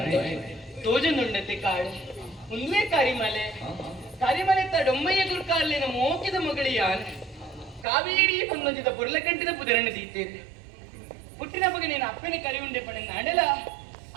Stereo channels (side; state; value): left; drops out; at 7.9 s